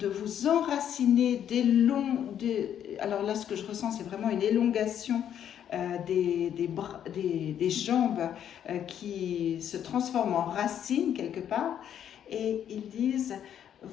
vous enraciner alors là, ce que je ressens, c'est vraiment une élongation des jambes qui se transforment en racines quelque part. Et ils disent,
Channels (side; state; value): right; quieter; 9.7 dB